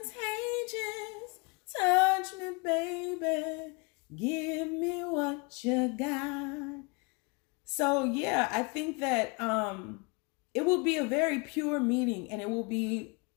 Touch me, baby. Give me what you got. So yeah, I think that it will be a very pure meeting, and it will be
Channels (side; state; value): right; quieter; 30.5 dB